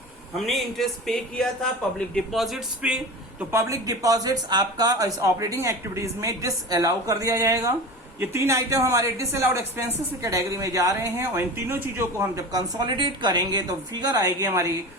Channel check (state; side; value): normal; both; correlation 0.31